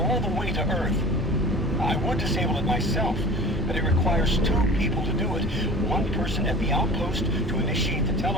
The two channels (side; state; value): both; normal; correlation 0.40